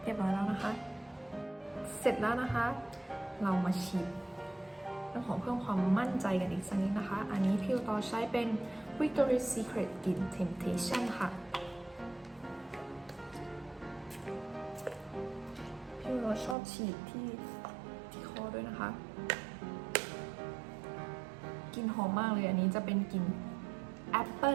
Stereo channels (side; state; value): left; drops out; at 16.6 s